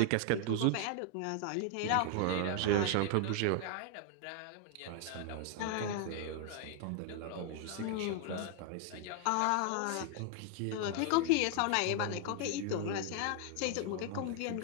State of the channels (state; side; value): different; both; correlation 0.00